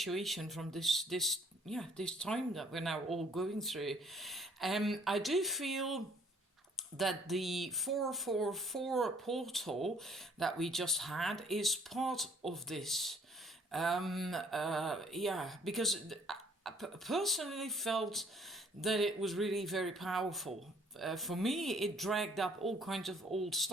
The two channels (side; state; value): both; normal; correlation 0.60